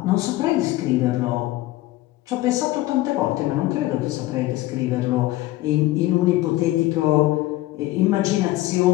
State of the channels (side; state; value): right; quieter; 17.1 dB